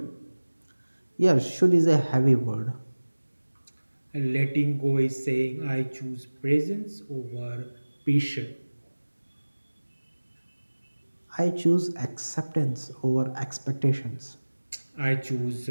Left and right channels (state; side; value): inverted; both; correlation -1.00